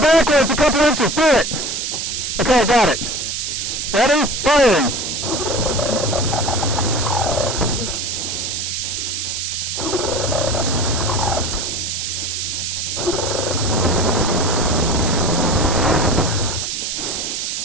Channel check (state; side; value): noise; right; hiss, 3 dB below the sound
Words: backwards a couple inches. Do it. Okay, I got it. Ready? Firing.